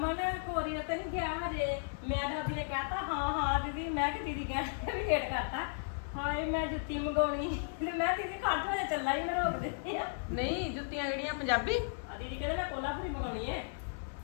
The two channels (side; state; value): right; silent; digital silence